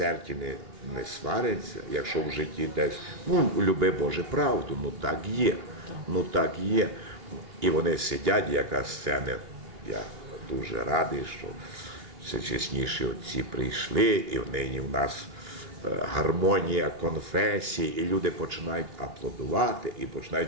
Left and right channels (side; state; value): left; late; 2.9 ms